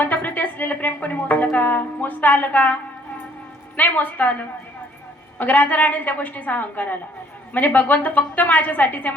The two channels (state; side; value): normal; both; correlation 0.61